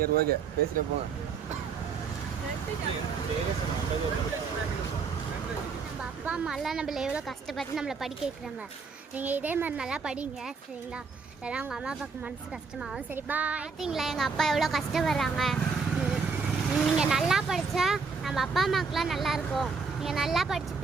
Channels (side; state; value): left; quieter; 5.1 dB